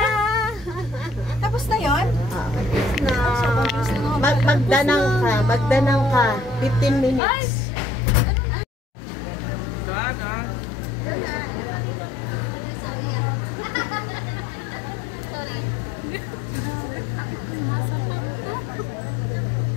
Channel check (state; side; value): drops out; right; at 7.2 s